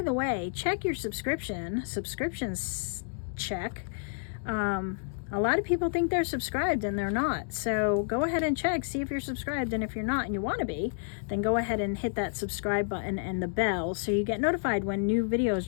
the way, check your subscriptions check. A lot of people think they're subscribed and they're not. So go ahead and check, see if you're subscribed. And if you're not and you want to be, then go ahead and hit that subscribe button and the bell so you get notified when new videos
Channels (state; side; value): silent; right; digital silence